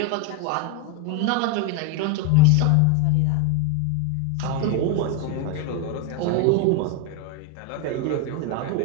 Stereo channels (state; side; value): different; both; correlation 0.02